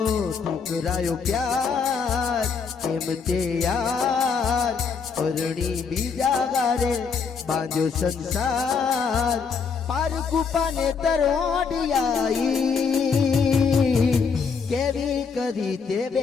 ઠુકરાયો પ્યાર કેમ તે યાર, પરણી બીજા ગારે બાંધ્યો સંસાર, પાર કૂપાને તરોડિયાઈ, કેવી કરી તે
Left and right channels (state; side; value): quieter; right; 5.6 dB